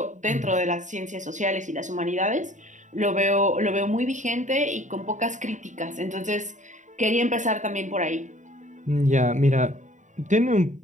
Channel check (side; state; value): left; late; 0.36 ms